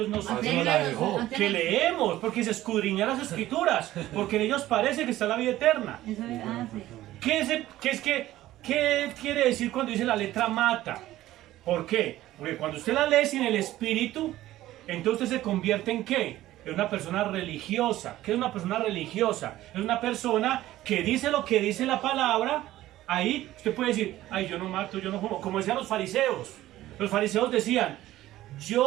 que leemos, porque se escudriñan las escrituras, porque en ellos parece que está la vida eterna. Eso es- sí. ¿Qué quiere decir cuando dice la letra mata? ¿Por qué? Porque cuando usted la lee sin el espíritu, entonces usted se convierte en ¿qué? En una persona religiosa. ¿Qué es una persona religiosa? Es una persona que dice lo que dice la palabra. Ahí usted puede decir, ay, yo no mato, yo no fumo. Como decían los fariseos. Los fariseos decían,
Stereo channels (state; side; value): quieter; left; 15.0 dB